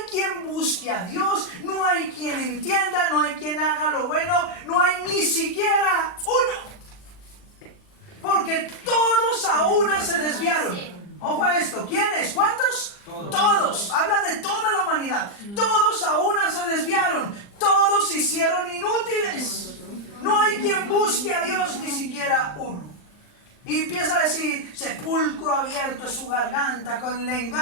quien busque a Dios, no hay quien entienda, no hay quien haga lo bueno, no hay ni siquiera uno. Porque todos a una se desviaron. Ojo a esto, ¿quiénes? ¿Cuántos? Todos. Habla de toda la humanidad. Todos a una se desviaron. Todos se hicieron inútiles. No hay quien busque a Dios, ni siquiera uno. Y empieza a decir, sepulcro abierto es su garganta, con le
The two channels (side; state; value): right; late; 40 ms